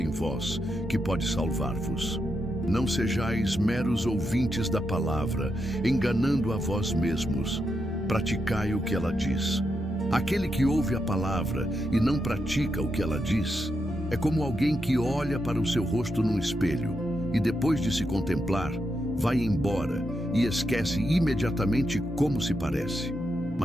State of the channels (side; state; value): both; normal; correlation 0.84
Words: vós, que pode salvar-vos. Não sejais meros ouvintes da palavra, enganando a vós mesmos. Praticai o que ela diz. Aquele que ouve a palavra e não pratica o que ela diz, é como alguém que olha para o seu rosto num espelho e, depois de se contemplar, vai embora e esquece imediatamente como se parece.